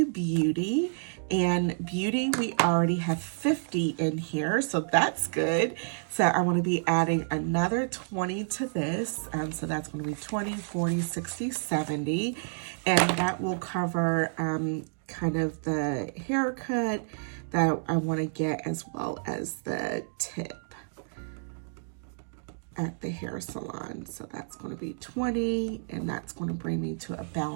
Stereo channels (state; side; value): silent; left; digital silence